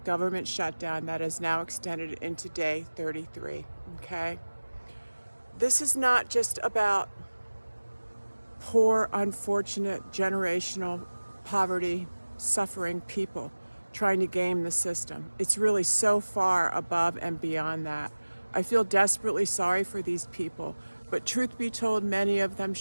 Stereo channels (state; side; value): inverted; both; correlation -1.00